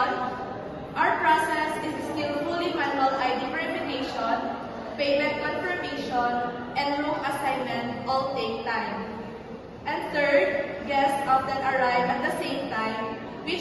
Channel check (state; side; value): identical; both; correlation 1.00